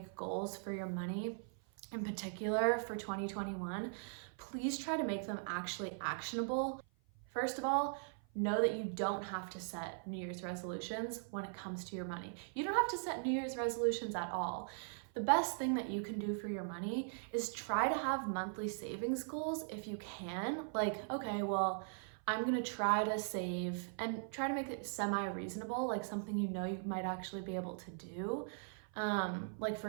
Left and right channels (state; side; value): silent; left; 51 dB below the other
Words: goals for your money, in particular for 2021, please try to make them actually actionable. First of all, know that you don't have to set New Year's resolutions when it comes to your money. You don't have to set New Year's resolutions at all. The best thing that you can do for your money is try to have monthly savings goals if you can. Like, okay, well, I'm gonna try to save and try to make it semi-reasonable, like something you know you might actually be able to do. Like for